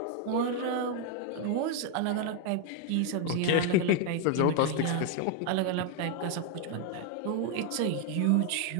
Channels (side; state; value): both; different; correlation 0.00